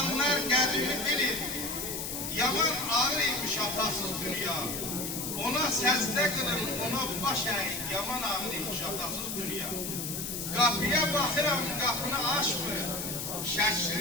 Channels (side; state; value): left; noise; hiss, 4 dB below the sound